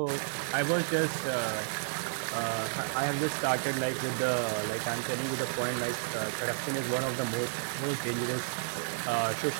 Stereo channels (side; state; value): left; silent; digital silence